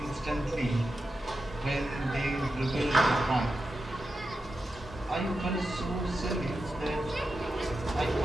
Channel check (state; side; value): normal; both; correlation 0.89